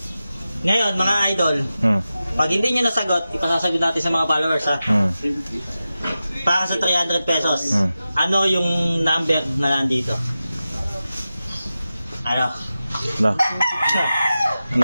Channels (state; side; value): inverted; both; correlation -0.93